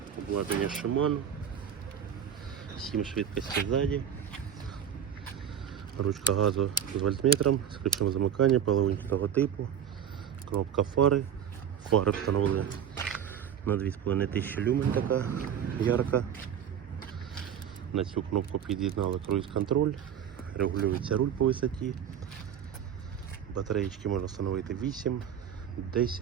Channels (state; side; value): quieter; left; 8.8 dB